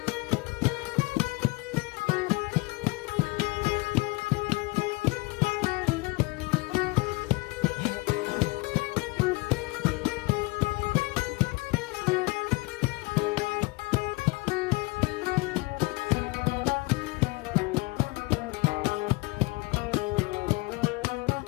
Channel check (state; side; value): quieter; right; 24.7 dB